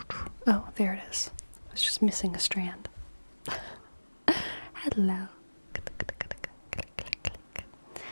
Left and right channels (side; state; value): both; inverted; correlation -1.00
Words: Oh, there it is. I was just missing a strand. Hello.